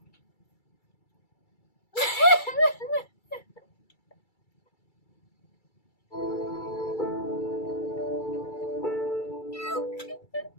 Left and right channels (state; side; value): late; right; 2.3 ms